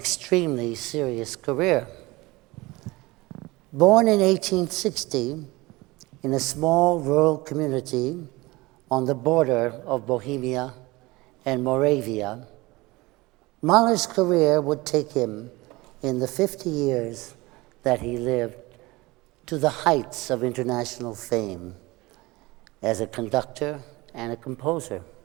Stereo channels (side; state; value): left; quieter; 21.8 dB